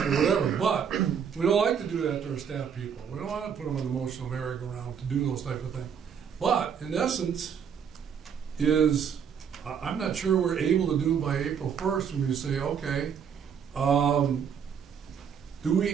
or whatever. But we don't like to do that to our staff people. We don't want to put them on the emotional merry-go-round to do those type of things. But in essence, I'm not sure we're able to do by April 1st when we say, okay, do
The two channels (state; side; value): quieter; left; 7.5 dB